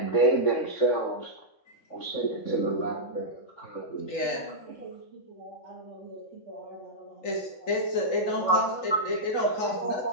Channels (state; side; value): late; right; 3.8 ms